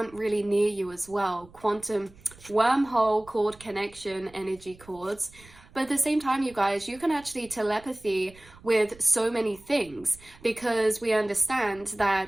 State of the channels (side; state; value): right; noise; rumble, 24 dB below the sound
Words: really near you as well. Quantum wormhole cord connection energy cords. But at the same time, you guys, you can actually telepathy with so many things, because we understand